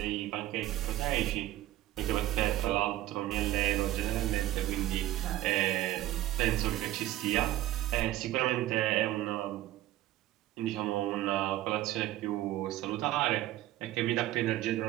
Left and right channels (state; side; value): quieter; left; 14.8 dB